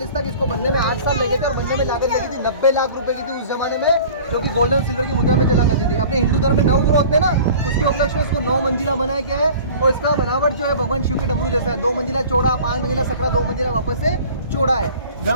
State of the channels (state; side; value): inverted; both; correlation -0.44